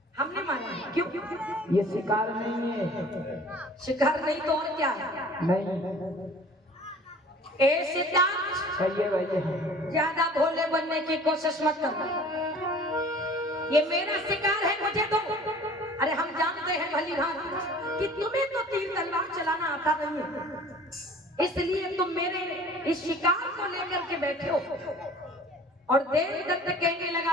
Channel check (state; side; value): normal; both; correlation 0.47